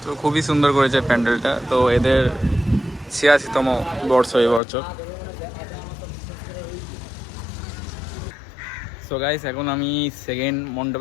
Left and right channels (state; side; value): drops out; right; at 4.6 s